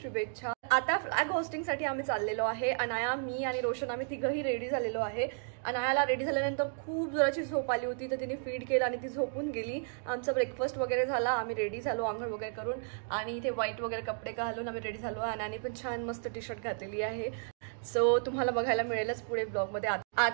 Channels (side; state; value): left; silent; digital silence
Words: शुभेच्छा। आता फ्लॅग होस्टिंगसाठी आम्ही चाललेलो आहे। अनाया, मी आणि रोशन आम्ही तिघही रेडी झालेलो आहे। अनायाला रेडी झाल्यानंतर खूप जोराची झोप आली होती, तर तिने फीड केलं आणि ती झोपून गेली। आमचा ब्रेकफास्ट वगैरे झाला, आम्ही रेडी झालो आंघोळ वगैरे करून आणि इथे व्हाईट वगैरे कपडे घालून आम्ही रेडी झालो। अनायाने पण छान मस्त टी शर्ट घातलेली आहे। सो तुम्हाला बघायला मिळेलच पुढे ब्लॉगमध्ये।